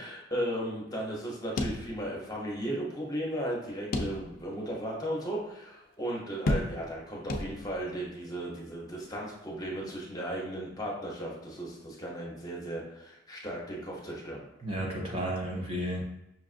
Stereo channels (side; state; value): both; normal; correlation 0.60